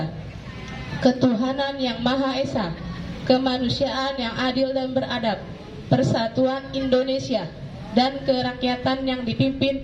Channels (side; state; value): both; identical; correlation 1.00